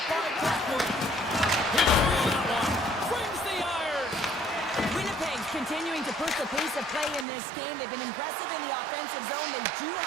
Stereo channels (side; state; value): left; drops out; at 7.2 s